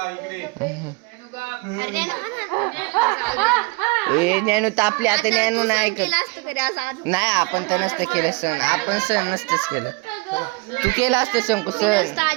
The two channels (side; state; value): left; quieter; 26.9 dB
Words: इकडे अरे ना ए ज्ञानू तापले आता ज्ञानू नाही ऐकत केलं असतं तरी असं आज नाही आपण तर नसतं केलं सण आपण सण नसतंच केलं तू केलं असतं शंकू सण